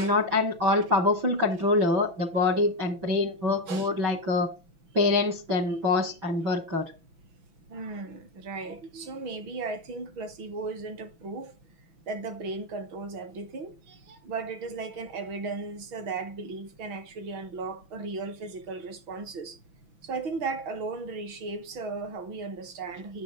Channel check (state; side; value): late; left; 6.0 ms